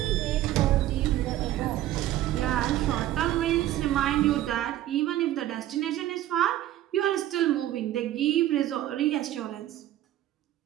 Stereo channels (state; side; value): quieter; left; 13.7 dB